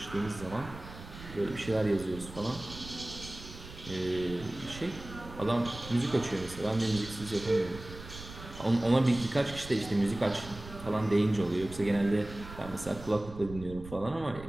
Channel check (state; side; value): noise; right; rumble, 14 dB below the sound